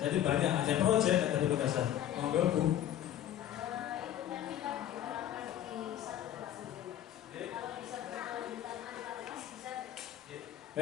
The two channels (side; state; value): right; quieter; 11.3 dB